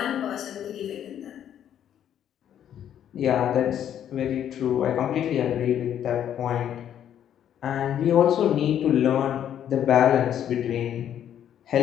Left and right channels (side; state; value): right; quieter; 10.1 dB